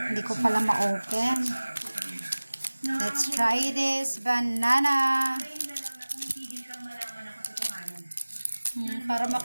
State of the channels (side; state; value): both; inverted; correlation -1.00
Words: ko pala ma-open. Let's try this banana. Para